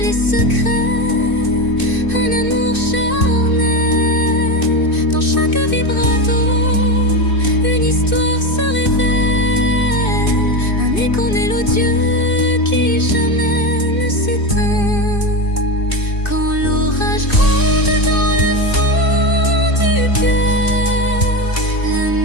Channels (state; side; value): late; right; 2.6 ms